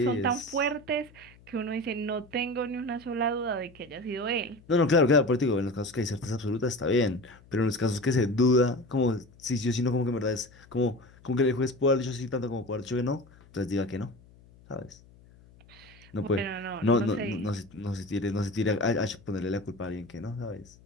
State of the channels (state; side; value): noise; left; hum, 25 dB below the sound